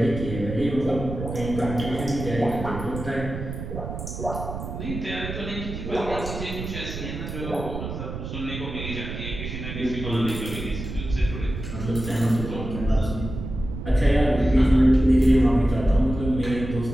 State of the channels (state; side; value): noise; right; rumble, 7 dB below the sound